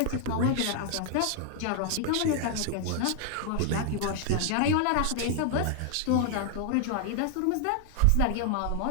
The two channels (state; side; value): different; both; correlation 0.00